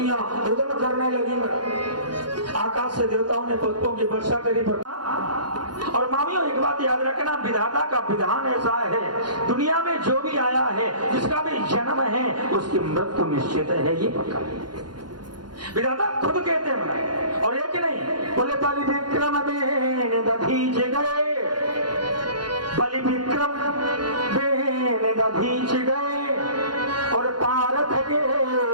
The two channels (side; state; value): left; late; 0.71 ms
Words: रुदन करने लगी। आकाश से देवताओं ने पुष्पों की वर्षा करी। और मामियों एक बात याद रखना, विधाता का विधान ऐसा है दुनिया में जो भी आया है जिसका भी जन्म है उसकी मृत्यु निश्चित है, ये पक्का विधाता खुद कहते हैं। और एक नहीं बोले बलि विक्रम बेन दधीच गए, बलि विक्रम बेन दधीच गए और पारथ के